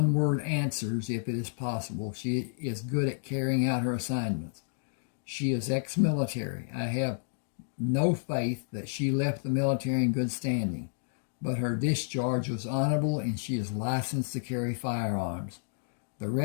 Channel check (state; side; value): silent; right; digital silence